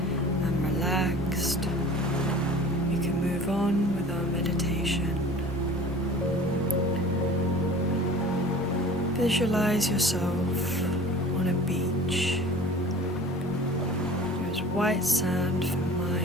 and relaxed. You can move move on with our meditation. Visualize yourself on a beach. There's white sand for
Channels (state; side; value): normal; both; correlation 0.43